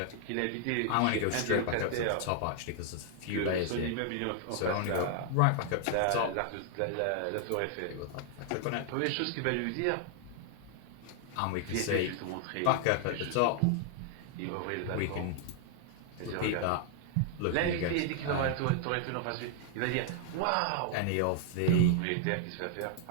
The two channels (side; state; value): both; different; correlation 0.00